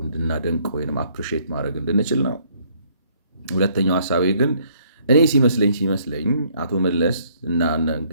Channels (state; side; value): inverted; both; correlation -0.65